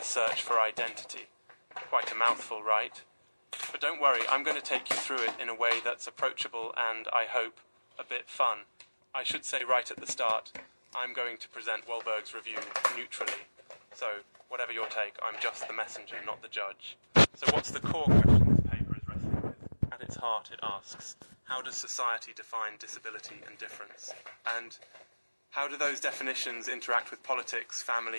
Search for Identity. Quite a mouthful, right? But don't worry, I'm going to take you through it in a way that's approachable and, I hope, a bit fun. I should say right at the start, I'm going to present Walberg's review neutrally. So, whatever your take, I'm just the messenger, not the judge. So what's the core question this paper is wrestling with? At its heart, it asks, how does society define disability and difference? And how do those definitions interact with politics,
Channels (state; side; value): inverted; both; correlation -1.00